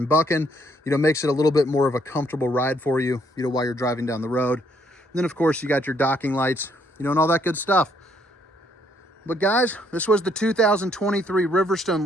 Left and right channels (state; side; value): normal; both; correlation 0.69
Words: bucking. Makes it a little bit more of a comfortable ride for you, while you're driving down the road. And then, of course, you got your docking lights, and all that good stuff. But guys, this was the 2023